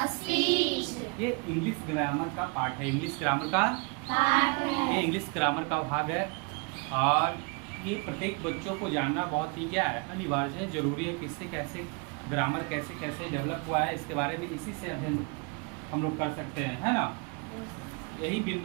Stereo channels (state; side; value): quieter; left; 31.9 dB